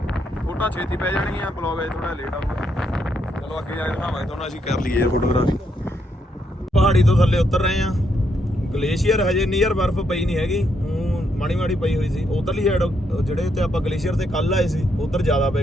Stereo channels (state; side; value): normal; both; correlation 0.77